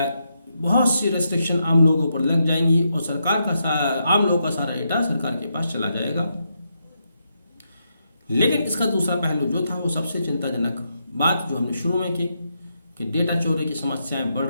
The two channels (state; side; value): inverted; both; correlation -0.82